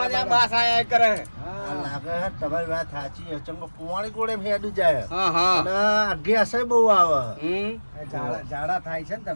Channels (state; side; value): inverted; both; correlation -1.00